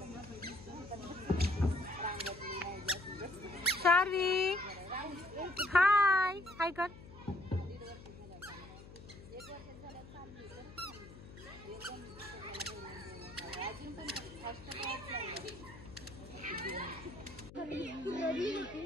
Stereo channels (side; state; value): left; noise; hum, 17 dB below the sound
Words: शार्वी हाय हाय कर.